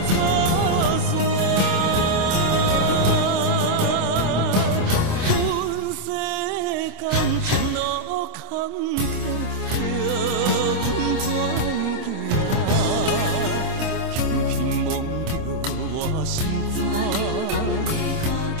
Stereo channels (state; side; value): late; left; 26 ms